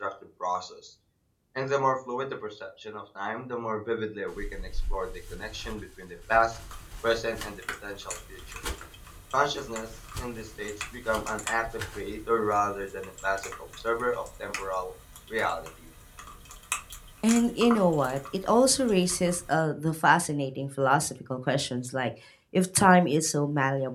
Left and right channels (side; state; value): both; identical; correlation 1.00